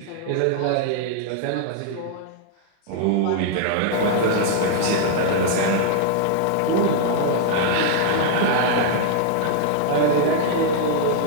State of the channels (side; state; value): both; different; correlation -0.01